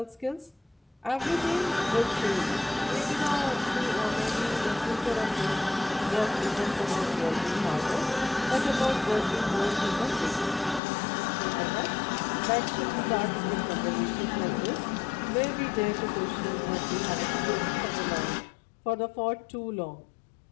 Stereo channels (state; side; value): drops out; right; at 10.8 s